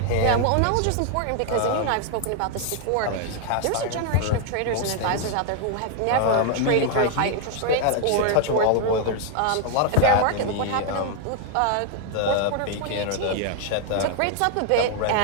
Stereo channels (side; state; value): both; different; correlation 0.00